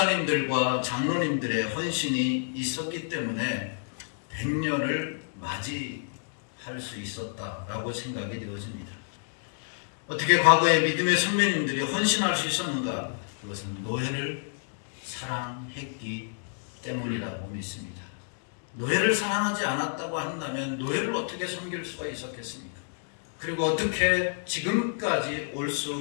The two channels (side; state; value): right; silent; digital silence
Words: 장로님들의 헌신이 있었기 때문에 100년을 맞이할 수 있었다라고 생각이 되어집니다. 어떻게 과거에 믿음의 선배님들이 헌신할 수 있었는가? 그것은 노예를 사랑했기 때문이라고 믿습니다. 노예를 사랑하지 않았다고 한다면 노예를 어떻게 섬길 수가 있었겠습니까? 그리고 어떻게 지금까지 올